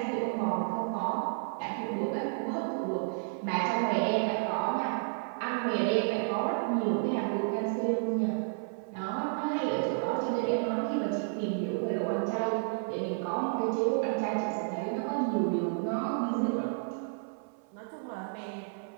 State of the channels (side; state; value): left; silent; 57 dB below the other